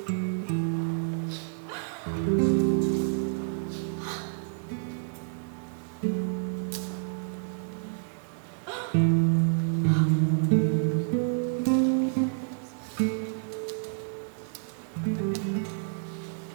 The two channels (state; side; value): silent; left; digital silence